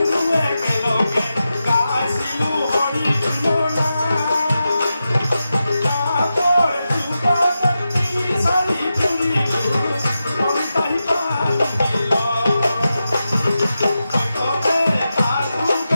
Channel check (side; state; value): both; inverted; correlation -0.91